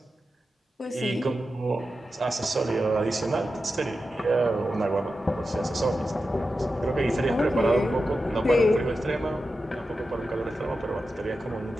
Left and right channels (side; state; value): both; normal; correlation 0.91